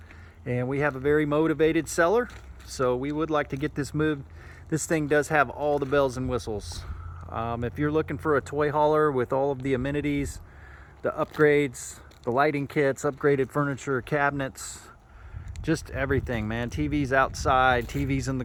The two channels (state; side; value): identical; both; correlation 1.00